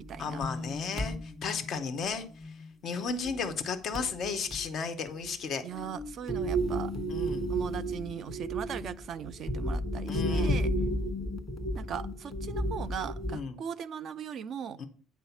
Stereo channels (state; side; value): normal; both; correlation 0.61